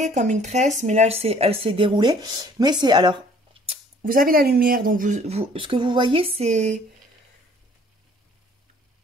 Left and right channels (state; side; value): normal; both; correlation 0.56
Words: comme une tresse, mais là, elle s'est déroulée. Mais c'est... Alors, vous avez la lumière, donc ce que vous voyez, c'est...